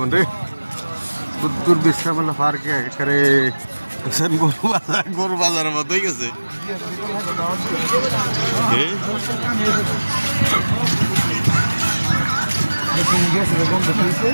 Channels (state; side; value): inverted; both; correlation -1.00